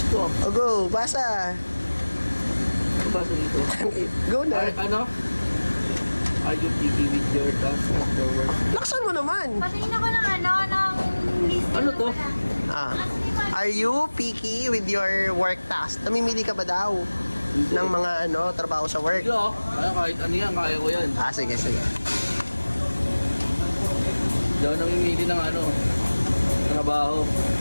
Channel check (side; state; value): both; inverted; correlation -1.00